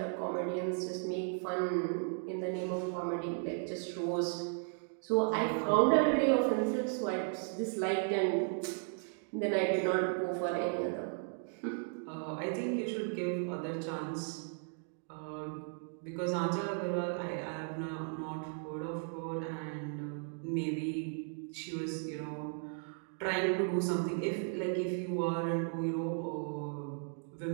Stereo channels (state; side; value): silent; left; 54 dB below the other